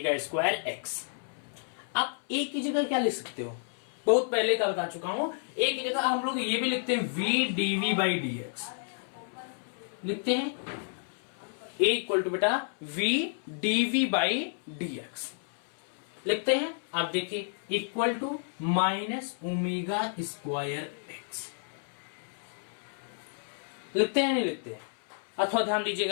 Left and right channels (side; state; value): right; silent; 57 dB below the other